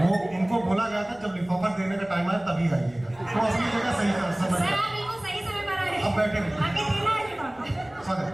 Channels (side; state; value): left; noise; rumble, 27 dB below the sound